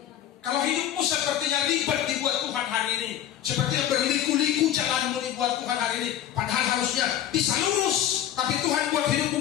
Kalau hidupmu sepertinya ribet dibuat Tuhan hari ini, sepertinya berliku-liku jalanmu dibuat Tuhan hari ini, padahal harusnya bisa lurus, tapi Tuhan buat hidupmu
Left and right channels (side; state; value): right; quieter; 11.1 dB